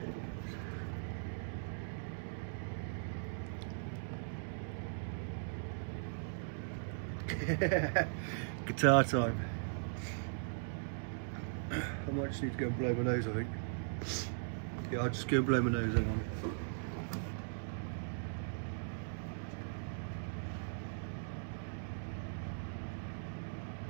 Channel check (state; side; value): silent; left; digital silence